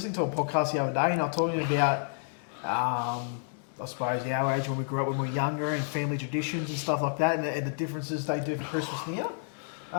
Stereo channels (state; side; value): silent; right; digital silence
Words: to a podcast the other day, and I was talking about, I suppose, our age when we grew up when we were younger, and family traditions and stuff like that, and the differences they do for Christmas now.